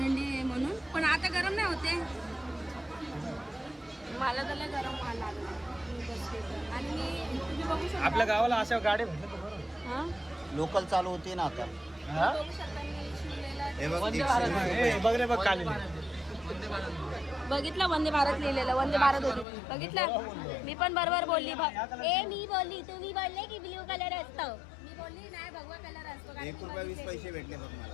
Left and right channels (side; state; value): right; drops out; at 19.5 s